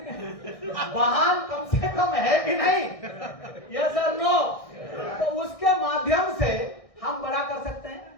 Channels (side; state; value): right; late; 1.6 ms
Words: वाहन कम से कम है कि नहीं? यस और नो? तो उसके माध्यम से हम बड़ा कर सकते हैं।